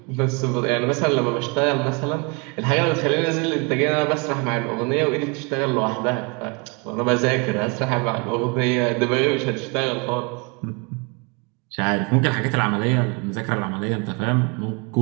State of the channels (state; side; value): quieter; left; 31.1 dB